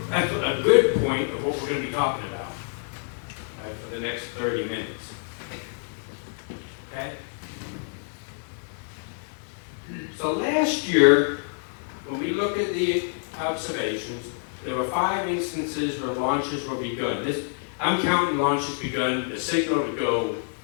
good point of what we're going to be talking about for the next 30 minutes. Okay? So last year, when we look at the observations, there were 5 instances where launches were begun. I'm counting launches begun, the signal to go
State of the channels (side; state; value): right; silent; 60 dB below the other